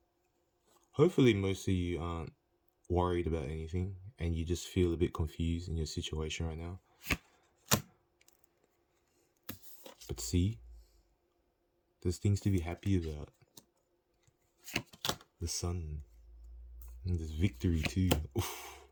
Hopefully most of you aren't worried about anything and you just feel a bit confused in your situation right now. But see, there's things to be happy about. The sun. And there's victory too. Oof.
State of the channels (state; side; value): identical; both; correlation 1.00